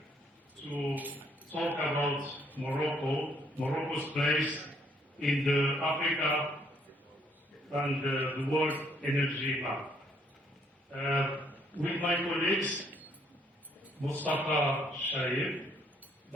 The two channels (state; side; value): normal; both; correlation 0.68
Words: to talk about Morocco, Morocco's place in the Africa and the world energy map. With my colleagues, Mustafa Shair,